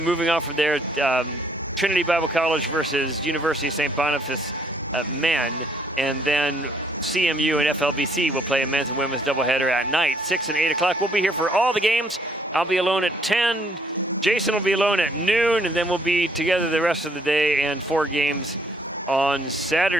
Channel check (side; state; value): both; normal; correlation 0.66